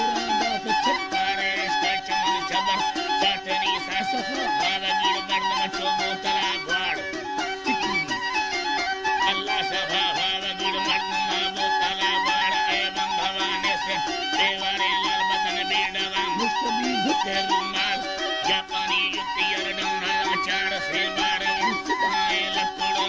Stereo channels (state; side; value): identical; both; correlation 1.00